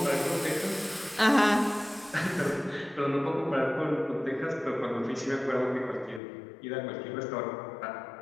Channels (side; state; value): right; drops out; at 6.2 s